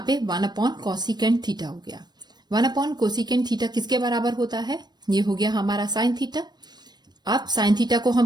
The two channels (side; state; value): left; late; 0.20 ms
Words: पे 1 अपॉन कोसिकेंट थीटा हो गया. 1 अपॉन कोसिकेंट थीटा किसके बराबर होता है, ये हो गया हमारा साइन थीटा. अब साइन थीटा को हम